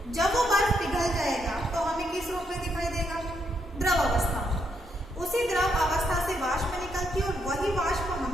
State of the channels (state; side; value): normal; both; correlation 0.77